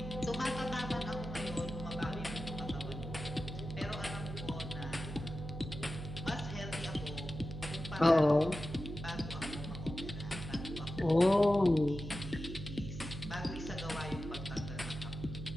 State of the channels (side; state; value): right; noise; hum, 8 dB below the sound